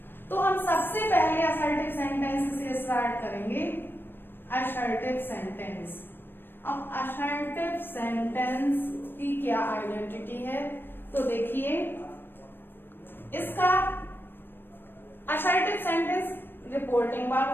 तो हम सबसे पहले असर्टिव सेंटेंस से स्टार्ट करेंगे। Assertive sentence. अब असर्टिव सेंटेंस की क्या आइडेंटिटी है, तो देखिए, इसका असर्टिव सेंटेंस रिपोर्टिंग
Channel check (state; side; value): late; right; 0.097 ms